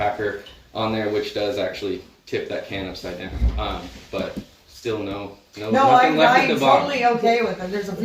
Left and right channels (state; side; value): identical; both; correlation 1.00